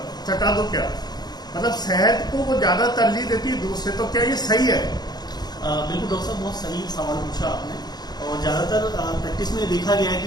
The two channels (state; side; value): late; right; 0.20 ms